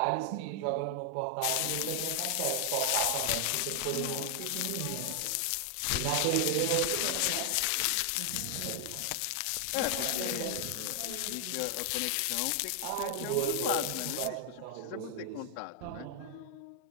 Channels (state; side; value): different; both; correlation 0.00